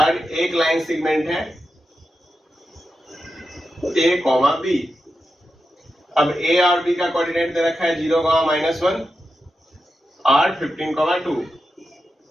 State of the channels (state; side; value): normal; both; correlation 0.89